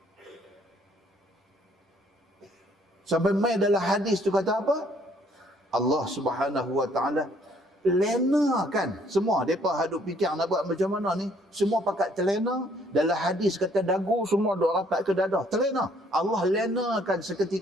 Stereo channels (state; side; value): normal; both; correlation 0.64